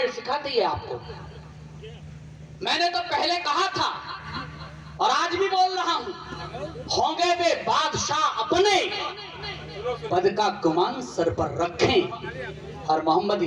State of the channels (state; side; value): identical; both; correlation 1.00